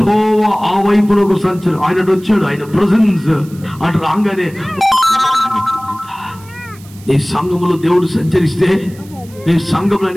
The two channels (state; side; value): noise; right; hiss, 24 dB below the sound